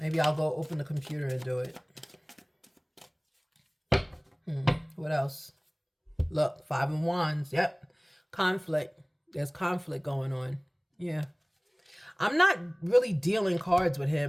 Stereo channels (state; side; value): identical; both; correlation 1.00